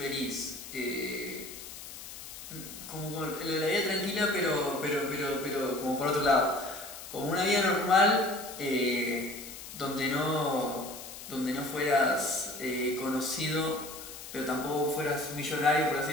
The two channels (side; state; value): left; noise; hiss, 12 dB below the sound